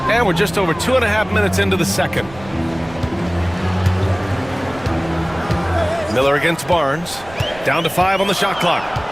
And we're just over 2.5 minutes into the second. Miller against Barnes. Down to 5 on the shot clock.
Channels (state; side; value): noise; right; rumble, 19 dB below the sound